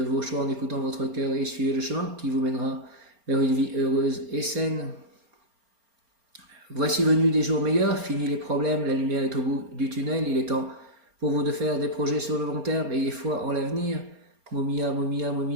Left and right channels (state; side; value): late; left; 4.3 ms